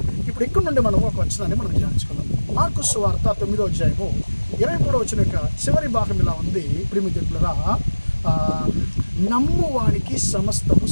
ఇప్పుడు ఇక్కడ నుండి మనం ఒక వచనాన్ని మనం ధ్యానించుకుందాం. మార్కు సువార్త 9వ అధ్యాయము 23వ వచనం యొక్క చివరి భాగం ఇలా ఉంది. ప్రియమిత్రులారా, నమ్మువానికి సమస్తము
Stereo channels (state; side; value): inverted; both; correlation -1.00